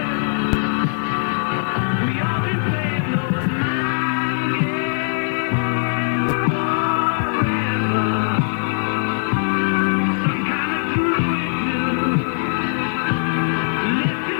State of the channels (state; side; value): silent; right; digital silence